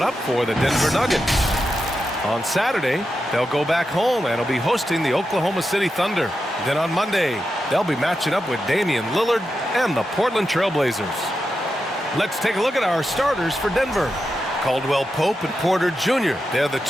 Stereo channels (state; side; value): normal; both; correlation 0.88